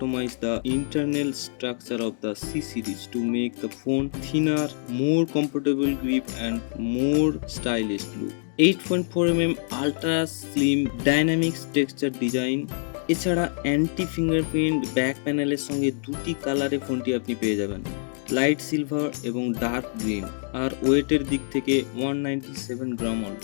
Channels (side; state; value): right; silent; digital silence